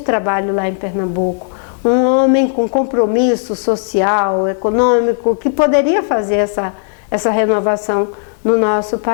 lá em Pernambuco, um homem com compromisso social, econômico, que poderia fazer essa renovação no nosso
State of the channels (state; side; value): silent; right; digital silence